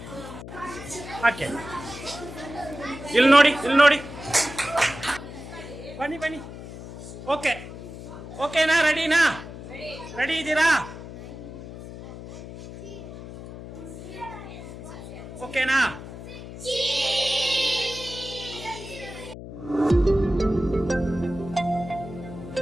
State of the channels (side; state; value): left; noise; hum, 12 dB below the sound